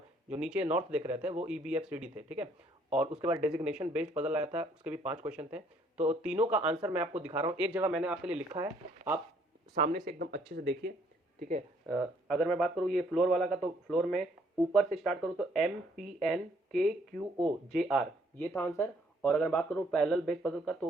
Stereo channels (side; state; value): both; normal; correlation 0.65